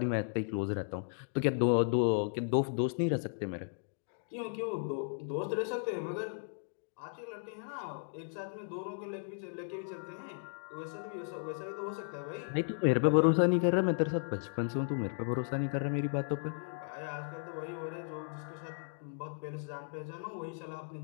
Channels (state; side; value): silent; right; digital silence